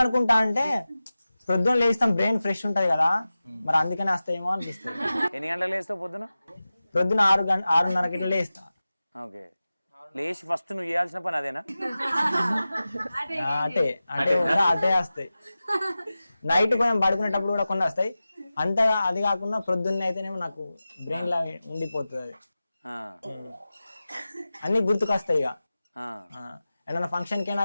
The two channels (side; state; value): both; inverted; correlation -0.95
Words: అంటే పొద్దున్న లేస్తాం, బ్రెయిన్ ఫ్రెష్ ఉంటది కదా, మరి అందుకనే వస్తాయేమో అనిపిస్తుంది. ఎన్ని గంటలు లేస్తావు పొద్దున? పొద్దున 6:30 ఇట్లా లేస్తా. ఓకే, లేచి ఫస్ట్ నువ్వు చేయాల్సిన పని అదేనా? అటే వస్తాయి. నైట్ కొంచెం పడుకునేటప్పుడు కూడా కొన్ని వస్తాయి. అంతగా అది కాకుండా ప్రొద్దున్న అయితేనేమో నాకు బ్రెయిన్ లా ఉండిపోతుంది అది, అన్ని గుర్తుకొస్తాయి. ఇక ఏదైనా ఫంక్షన్ కైనా